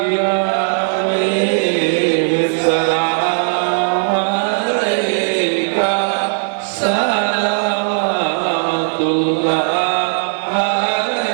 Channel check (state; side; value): silent; left; 67 dB below the other